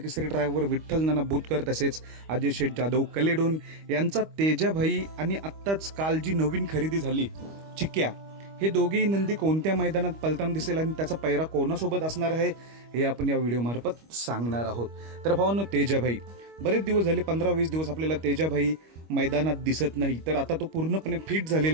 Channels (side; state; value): left; late; 25 ms